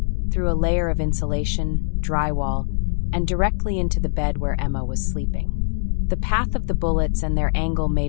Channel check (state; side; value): silent; right; digital silence